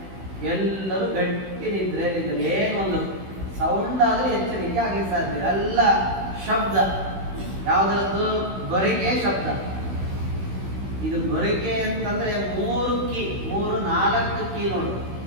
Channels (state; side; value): late; left; 16 ms